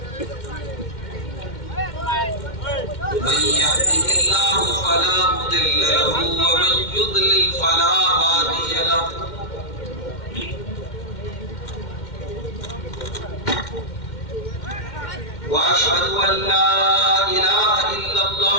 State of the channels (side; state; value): right; late; 2.1 ms